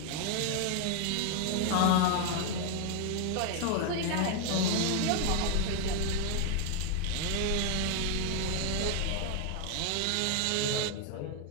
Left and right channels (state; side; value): different; both; correlation 0.00